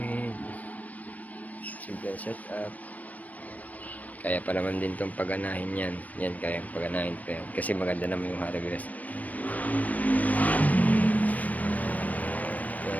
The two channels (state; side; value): late; right; 0.073 ms